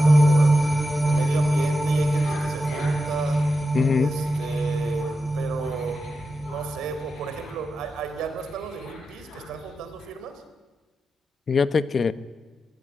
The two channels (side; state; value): both; normal; correlation 0.90